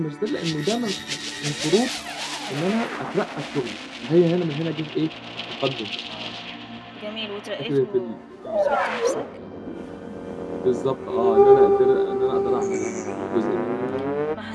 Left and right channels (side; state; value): both; identical; correlation 1.00